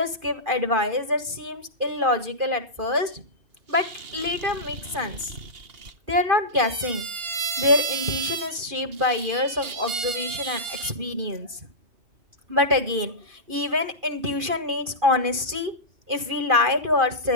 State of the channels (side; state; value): left; late; 2.5 ms